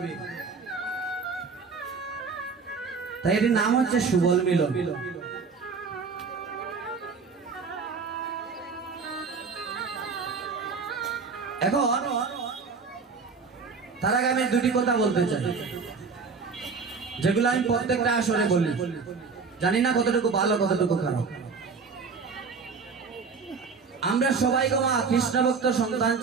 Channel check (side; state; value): left; quieter; 5.0 dB